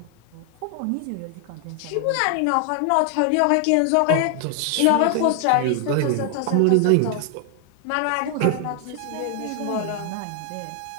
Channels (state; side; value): different; both; correlation 0.00